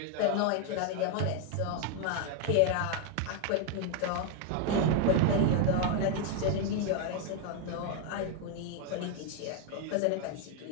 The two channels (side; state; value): both; different; correlation 0.01